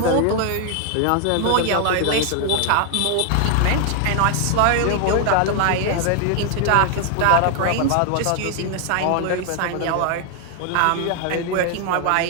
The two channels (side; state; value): both; different; correlation 0.00